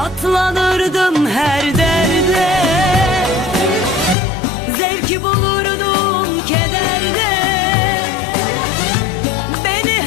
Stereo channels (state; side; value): drops out; right; at 4.2 s